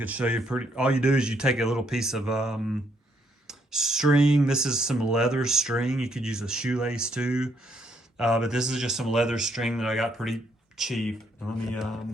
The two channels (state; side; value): normal; both; correlation 0.72